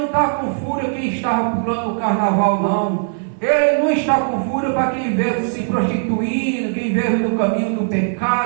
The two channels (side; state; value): left; silent; 58 dB below the other